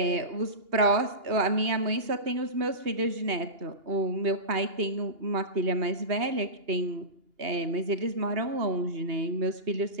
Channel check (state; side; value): late; left; 2.8 ms